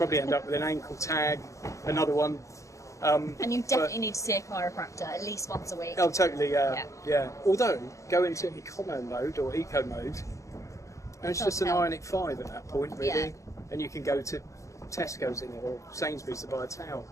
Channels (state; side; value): late; right; 0.15 ms